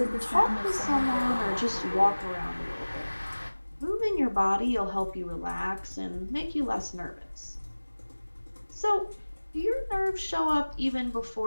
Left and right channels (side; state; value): both; inverted; correlation -1.00